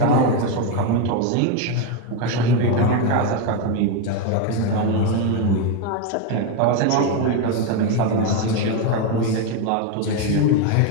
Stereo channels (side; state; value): both; different; correlation 0.02